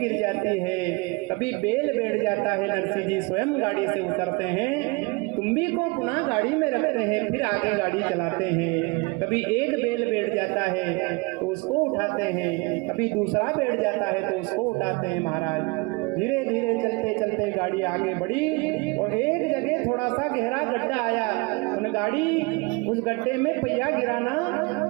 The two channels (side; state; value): left; quieter; 27.2 dB